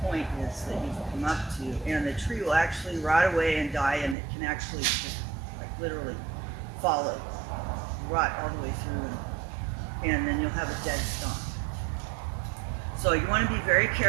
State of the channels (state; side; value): drops out; left; at 4.2 s